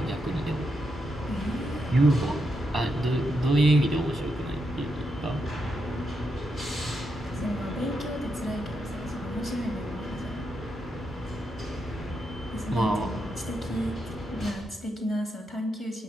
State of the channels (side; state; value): both; normal; correlation 0.83